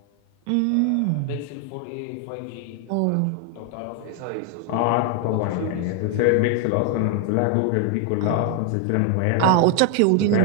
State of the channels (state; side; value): different; both; correlation 0.01